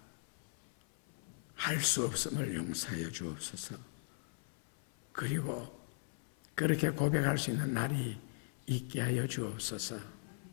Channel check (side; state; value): right; silent; 52 dB below the other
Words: 할 수 없음을 용서하여 주옵소서. 그리고 그렇게 고백할 수 있는 날이 있게 하여 주옵소서.